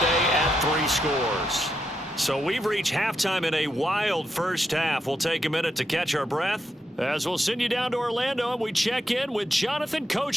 at 3 scores. So we've reached halftime in a wild first half. We'll take a minute to catch our breath as we'll send you down to Orlando and we check in with Jonathan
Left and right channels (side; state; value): both; normal; correlation 0.82